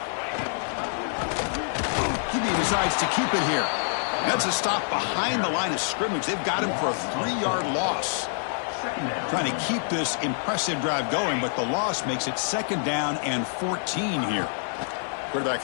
QB decides to keep it here. That's a stop behind the line of scrimmage. They've got him for a 3-yard loss. Trying to keep this impressive drive going, but the loss makes it 2nd down and 14 here.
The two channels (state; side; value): silent; right; digital silence